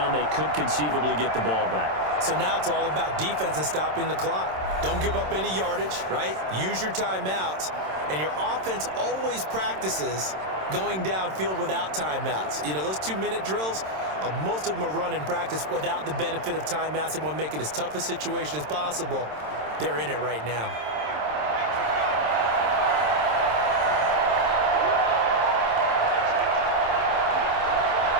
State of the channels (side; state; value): left; late; 27 ms